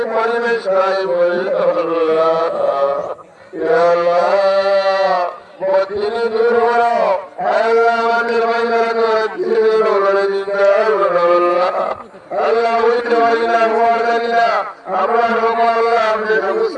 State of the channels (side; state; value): both; identical; correlation 1.00